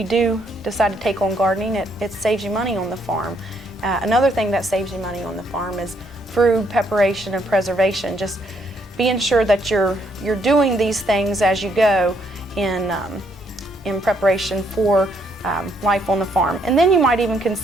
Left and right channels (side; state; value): both; normal; correlation 0.71